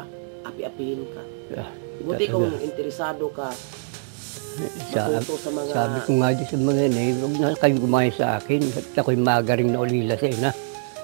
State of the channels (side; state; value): left; silent; digital silence